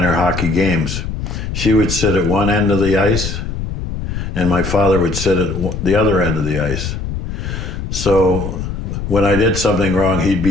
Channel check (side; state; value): left; noise; rumble, 5 dB below the sound